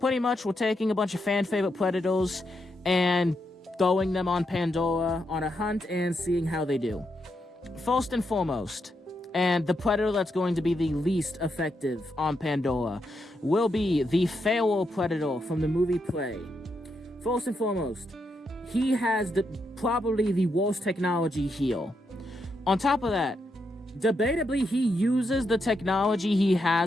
much, we're taking a bunch of fan-favorite Predators and throwing them on Pandora on a hunt and seeing how they do. First and foremost, and the Predator that's going to be the least effective on Pandora will be the Feral Predator from the movie Prey. First and foremost, he has probably the worst technology here. On top of that, debatably, he uses the technology he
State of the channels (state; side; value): normal; both; correlation 0.82